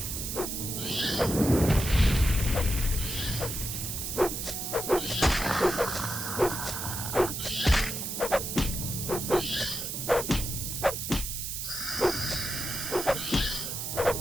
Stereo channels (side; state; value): right; noise; hiss, 4 dB below the sound